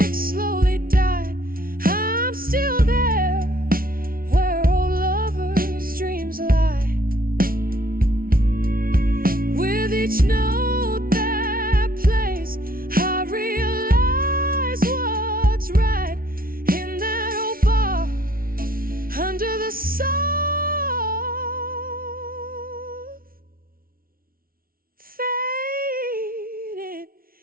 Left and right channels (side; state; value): left; late; 0.43 ms